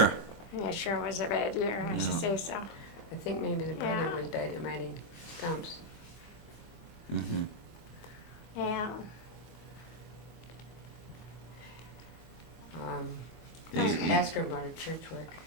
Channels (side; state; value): right; late; 24 ms